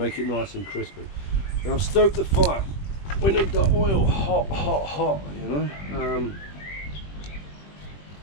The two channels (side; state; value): right; late; 20 ms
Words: it nice and crispy. Now I've stoked the fire. We need the oil hot, hot, hot, you know.